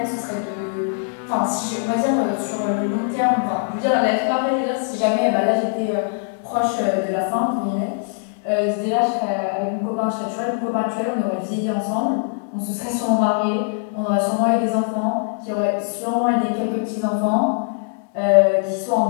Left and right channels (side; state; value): right; silent; digital silence